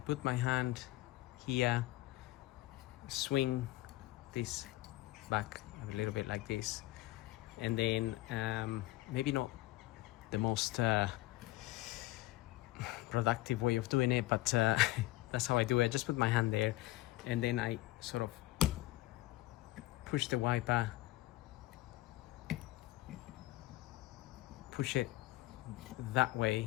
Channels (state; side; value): quieter; right; 18.1 dB